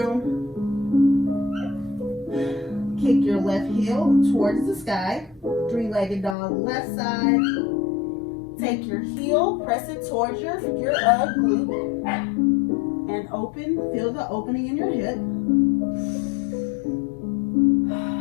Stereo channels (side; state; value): right; drops out; at 6.4 s